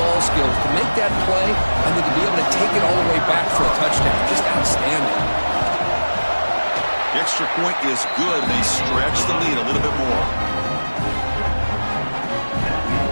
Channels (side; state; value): both; inverted; correlation -1.00